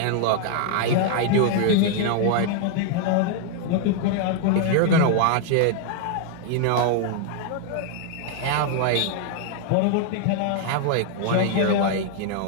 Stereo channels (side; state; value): both; different; correlation 0.00